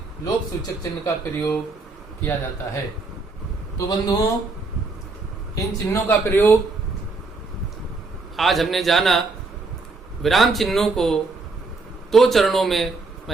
लोप सूचक चिन्ह का प्रयोग किया जाता है। तो बंधुओं, इन चिन्हों का प्रयोग आज हमने जाना। विराम चिन्हों को 2 चरणों में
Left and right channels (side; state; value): left; quieter; 3.8 dB